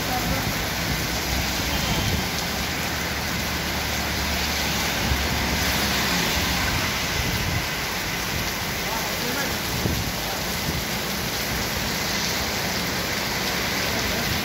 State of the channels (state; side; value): identical; both; correlation 1.00